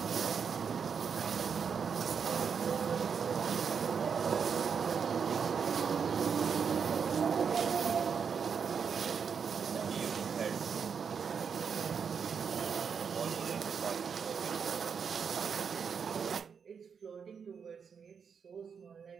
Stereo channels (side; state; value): left; quieter; 6.5 dB